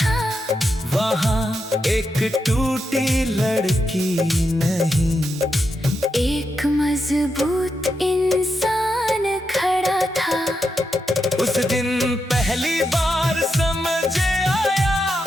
एक टूटी लड़की नहीं, एक मजबूत इंसान खड़ा था। उस दिन पहली बार समझ आया,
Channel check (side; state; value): both; normal; correlation 0.85